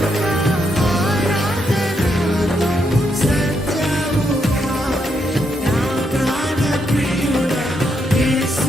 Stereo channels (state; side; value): normal; both; correlation 0.79